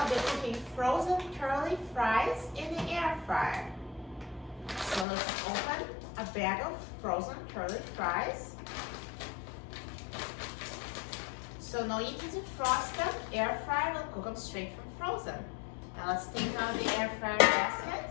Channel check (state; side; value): drops out; right; at 5.1 s